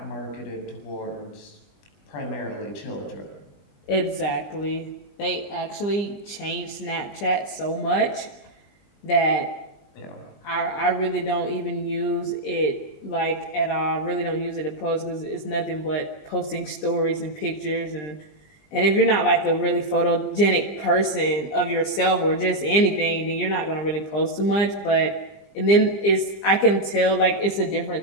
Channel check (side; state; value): right; late; 20 ms